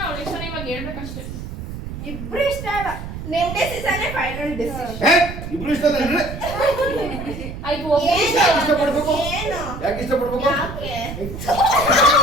ಅವಳು ಇಷ್ಟನ ಇವಾಗ ಹೇಳ್ಬೇಕಷ್ಟೇ ಇಬ್ರು ಇಷ್ಟ ಅಲ್ಲ ನಿಮ್ ಡಿಸಿಷನ್ ಫೈನಲ್ ಡಿಸಿಷನ್ ಏ ಇಬ್ರು ಇಷ್ಟ ಅಂದ್ರೆ ಆಯ್ತು ಒಬ್ಬ ಯಾಕೆ ಇಷ್ಟಪಡ್ಬೇಕು ಏನು ಯಾಕೆ ಇಷ್ಟಪಡ್ಬೇಕು ಯಾಕೆ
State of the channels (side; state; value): right; noise; rumble, 9 dB below the sound